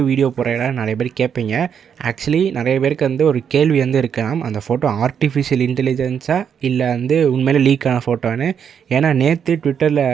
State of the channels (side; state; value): left; quieter; 7.7 dB